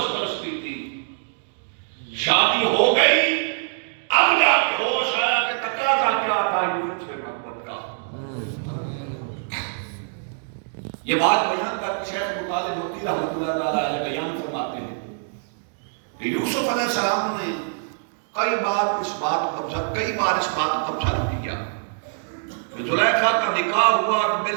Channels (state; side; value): silent; left; digital silence